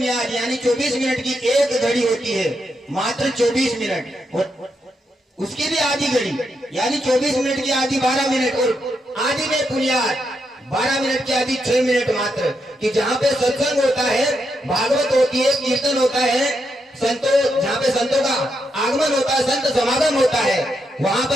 यानी 24 मिनट की एक घड़ी होती है, मात्र 24 मिनट, और उसकी भी आधी घड़ी यानी 24 मिनट की आधी 12 मिनट, और आधी में बुनियाद 12 मिनट की आधी 6 मिनट मात्र, कि जहाँ पे सत्संग होता है, भागवत होती है, कीर्तन होता है, संतों जहाँ पे संतों का आगमन होता है, संत समागम होता है, वहां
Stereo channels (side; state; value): both; normal; correlation 0.82